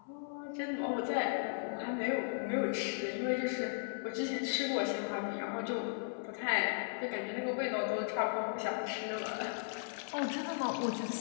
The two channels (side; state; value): right; silent; 53 dB below the other